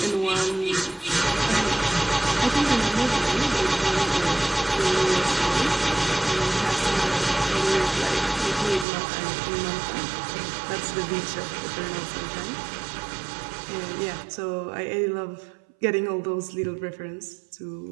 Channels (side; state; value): left; drops out; at 8.8 s